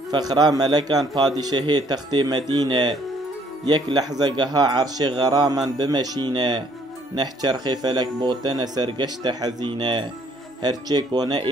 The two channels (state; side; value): normal; both; correlation 0.64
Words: فخرا ملكان بادشاهي تختي مدينة، يك لحظة قها عرش غراما بمشينة، نحجر خفلك بوتنا سرقشت حزينة، هرچيك